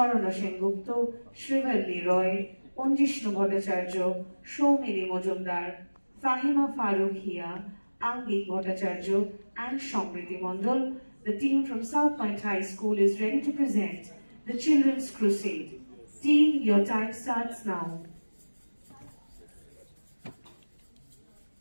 Sengupta, Shrivalli Roy, Onjishnu Bhattacharya, Soumili Mojumdar, Fahima Farookhia, Angik Bhattacharya, and Samriti Mondal. The team from South Point High School is ready to present The Children's Crusade. Team, your time starts now.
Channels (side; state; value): both; inverted; correlation -1.00